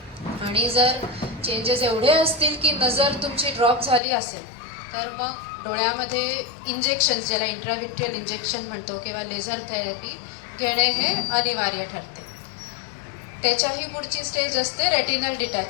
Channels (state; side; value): drops out; right; at 4.0 s